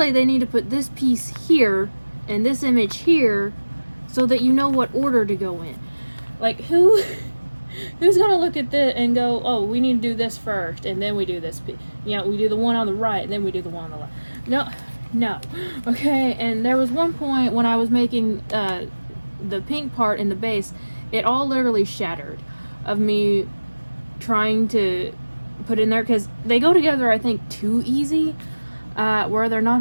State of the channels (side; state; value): both; inverted; correlation -1.00